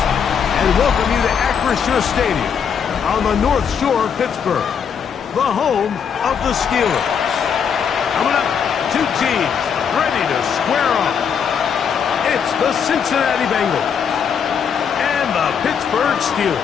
and welcome you to Acrisure Stadium on the North Shore of Pittsburgh, the home of the Steelers. Coming up, two teams ready to square off. It's the Cincinnati Bengals and the Pittsburgh Steelers.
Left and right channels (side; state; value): right; quieter; 7.2 dB